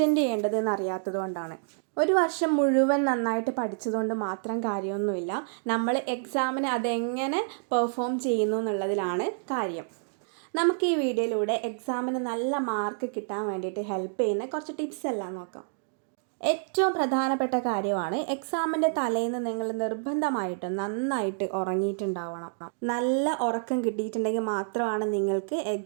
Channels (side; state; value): left; silent; digital silence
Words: ചെയ്യേണ്ടതെന്ന് അറിയാത്തത് കൊണ്ടാണ്. ഒരു വർഷം മുഴുവൻ നന്നായിട്ട് പഠിച്ചതുകൊണ്ട് മാത്രം കാര്യമൊന്നുമില്ല. നമ്മൾ എക്സാമിന് അതെങ്ങനെ പെർഫോം ചെയ്യുന്നു എന്നുള്ളതിലാണ് കാര്യം. നമുക്ക് ഈ വീഡിയോയിലൂടെ എക്സാമിന് നല്ല മാർക്ക് കിട്ടാൻ വേണ്ടിയിട്ട് ഹെൽപ്പ് ചെയ്യുന്ന കുറച്ച് ടിപ്സ് എല്ലാം നോക്കാം. ഏറ്റവും പ്രധാനപ്പെട്ട കാര്യമാണ് എക്സാമിൻ്റെ തലേന്ന് നിങ്ങൾ നിർബന്ധമായിട്ടും നന്നായിട്ട് ഉറങ്ങിയിട്ടുണ്ടാവണം. നല്ല ഉറക്കം കിട്ടിയിട്ടുണ്ടെങ്കിൽ മാത്രമാണ് നിങ്ങൾക്ക്